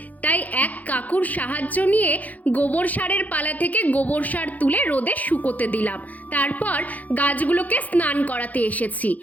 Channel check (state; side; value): late; right; 0.078 ms